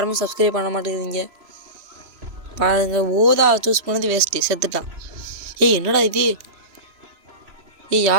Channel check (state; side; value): late; left; 3.2 ms